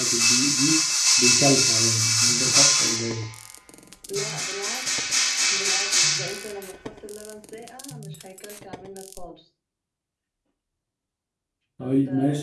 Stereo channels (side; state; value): both; identical; correlation 1.00